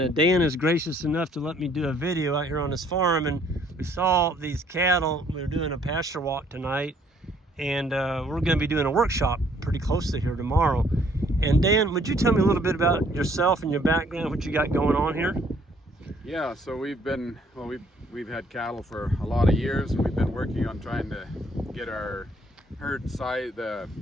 Dan is gracious enough to let me do a video out here on his farm. And we saw these cattle. We were doing a pasture walk tonight, and we're going to be doing a workshop pretty close to here tomorrow. And Dan, would you tell me a little bit about yourself and your background, what you got going on here? Yeah, so we've had cattle for a lot of years, and we've been working on trying to get our herd size, the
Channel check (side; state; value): both; normal; correlation 0.63